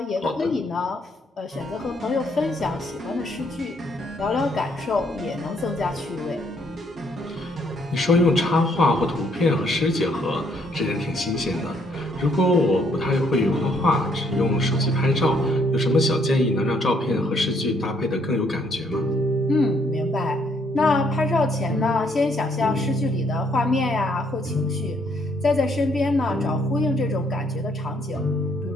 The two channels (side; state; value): both; normal; correlation 0.69